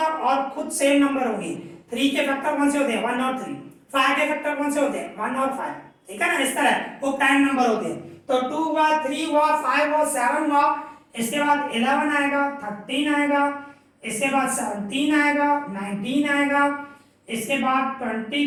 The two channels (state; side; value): identical; both; correlation 1.00